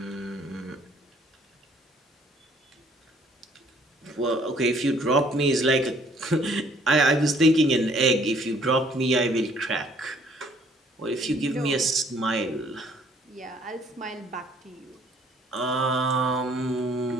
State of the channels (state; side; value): normal; both; correlation 0.61